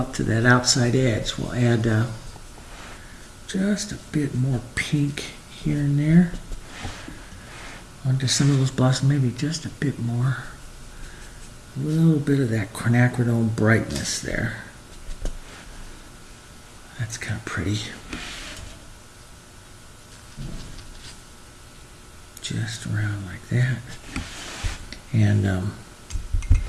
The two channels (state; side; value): identical; both; correlation 1.00